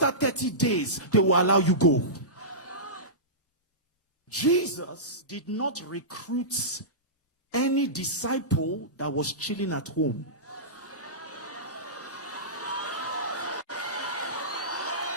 30 days they will allow you go. Jesus did not recruit any disciple that was chilling at home.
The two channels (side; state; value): both; normal; correlation -0.19